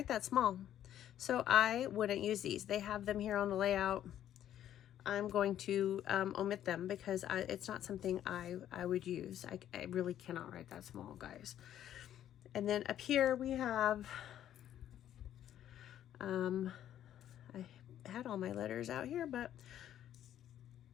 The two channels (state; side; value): quieter; right; 11.2 dB